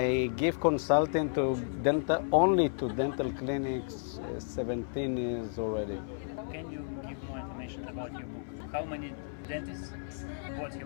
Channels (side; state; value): right; silent; 56 dB below the other